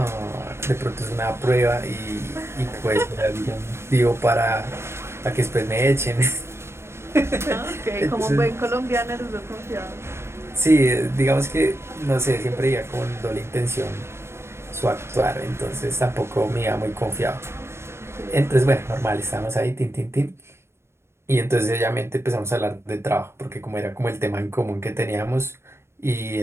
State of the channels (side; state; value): left; late; 0.12 ms